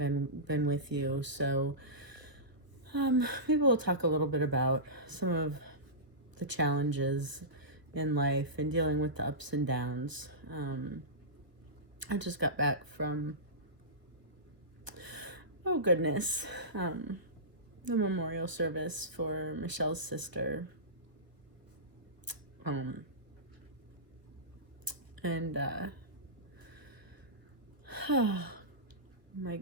with you. So maybe we'll talk a little bit about some of the challenges in life and dealing with the ups and downs. I just got back from, oh goodness, the memorial service for Michelle's sister. Oh my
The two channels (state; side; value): late; left; 1.0 ms